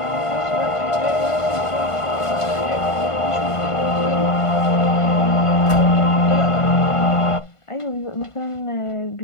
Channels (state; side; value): late; right; 1.5 ms